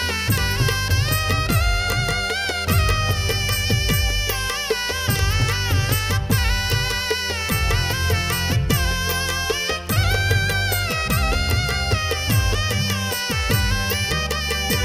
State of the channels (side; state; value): both; identical; correlation 1.00